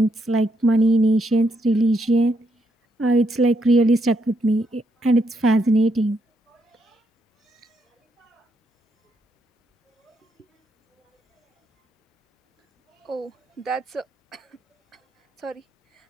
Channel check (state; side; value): normal; both; correlation 0.77